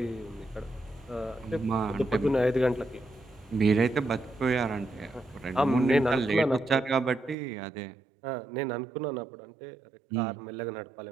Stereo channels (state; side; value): drops out; left; at 7.4 s